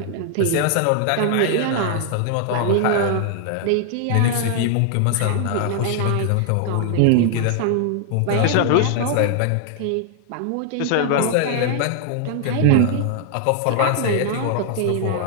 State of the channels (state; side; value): different; both; correlation 0.00